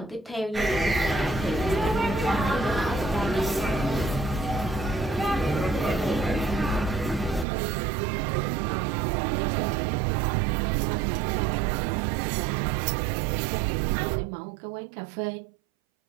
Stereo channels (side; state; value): left; drops out; at 7.5 s